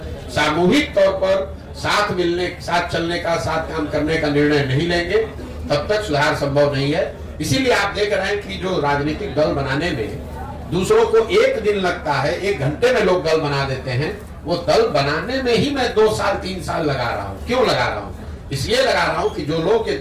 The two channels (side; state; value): both; identical; correlation 1.00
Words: सामूहिक तौर पर साथ मिलने, साथ चलने का, साथ काम करने का निर्णय नहीं लेंगे, तब तक सुधार संभव नहीं है। इसीलिए आप देख रहे हैं कि जो राजनीतिक दल बनाने में दूसरों को 1 दिन लगता है, 1 घंटे में लोग दल बना देते हैं, वो दल बनाने में ही मैं 2 साल 3 साल लगा रहा हूँ। क्यों लगा रहा हूँ? इसलिए लगा रहा हूँ कि जो लोग ये